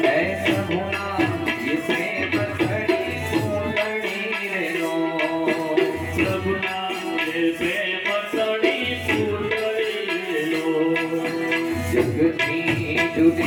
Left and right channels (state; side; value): identical; both; correlation 1.00